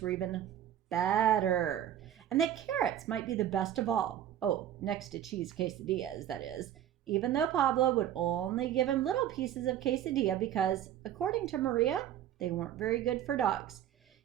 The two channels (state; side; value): quieter; left; 11.0 dB